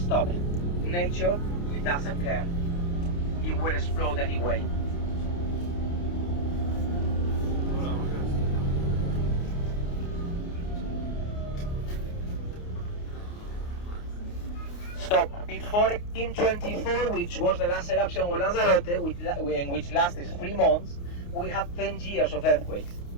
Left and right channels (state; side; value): late; right; 29 ms